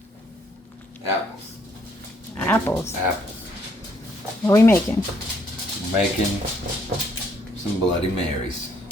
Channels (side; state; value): both; normal; correlation 0.68